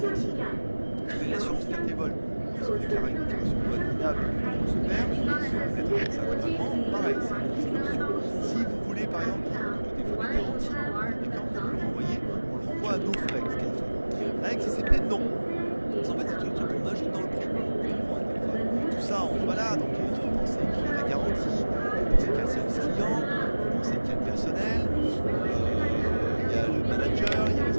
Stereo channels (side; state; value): both; inverted; correlation -1.00